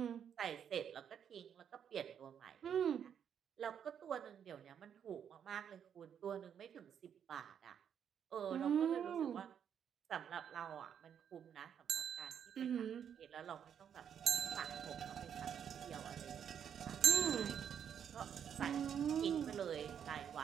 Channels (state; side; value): quieter; left; 8.4 dB